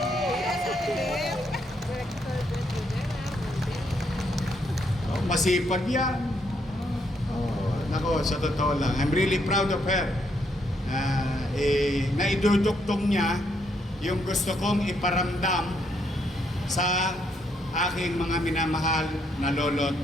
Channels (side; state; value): both; normal; correlation 0.74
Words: Masipag yan. Nako, sa totoo lang, I'm really proud of her. Naiduduktong niya yung gusto kong iparamdam sa aking mga minamahal na lolo't